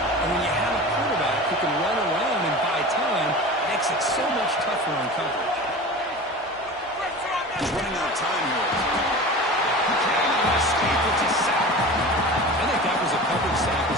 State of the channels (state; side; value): normal; both; correlation 0.34